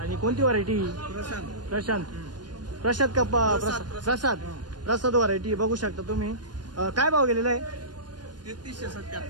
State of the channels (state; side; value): late; left; 0.70 ms